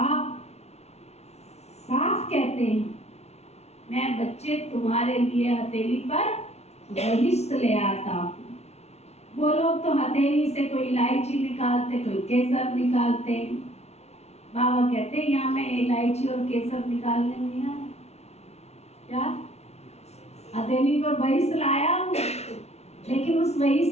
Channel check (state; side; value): late; right; 0.31 ms